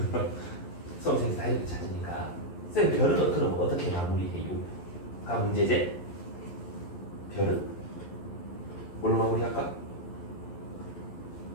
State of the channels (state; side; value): late; right; 11 ms